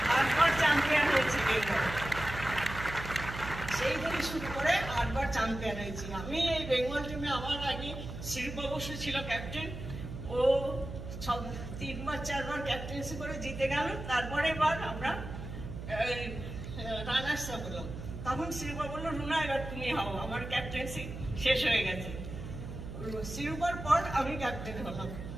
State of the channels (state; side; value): noise; right; hum, 9 dB below the sound